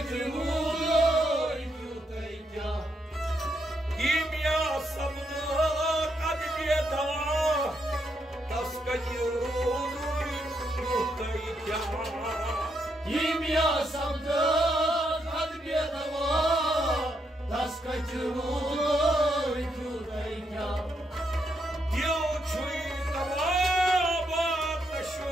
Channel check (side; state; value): both; normal; correlation 0.79